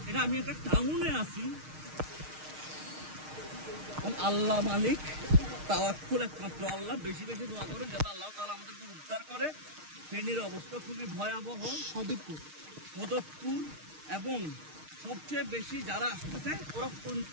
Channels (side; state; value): left; late; 6.5 ms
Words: এটা আমি একটা টাউনে আছি, আল্লাহ মালিক, তাওয়াক্কুল একমাত্র আল্লাহ। বেশি বেশি দোয়া করেন যাতে আল্লাহ তাআলা আমাদেরকে উদ্ধার করে। ফেনীর অবস্থা খুবই ভয়াবহ। সদরপুর এবং সবচেয়ে বেশি যারা আসতেছে ওরা